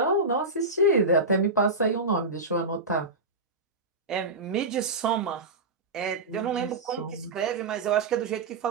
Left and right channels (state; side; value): quieter; left; 3.1 dB